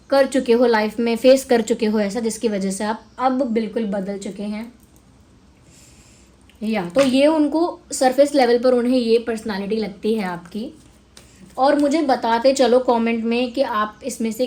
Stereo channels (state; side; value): identical; both; correlation 1.00